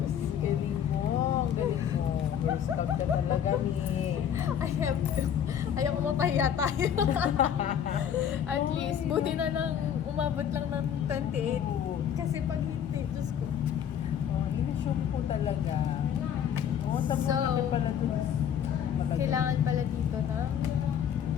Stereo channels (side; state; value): right; quieter; 8.9 dB